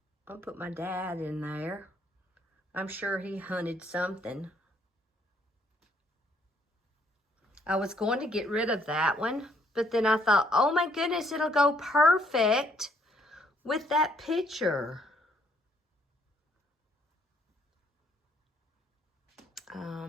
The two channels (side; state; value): both; normal; correlation 0.68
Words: I'll put my dad in there. I'm sure he hunted something. I was going to get rid of that one, but then I thought, oh my goodness, it'll go perfect with that picture.